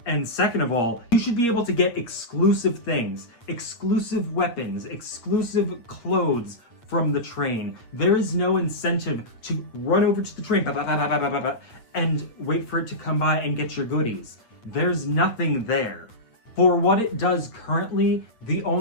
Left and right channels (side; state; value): right; late; 8.7 ms